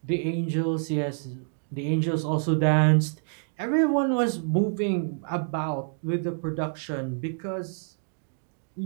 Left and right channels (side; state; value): left; silent; digital silence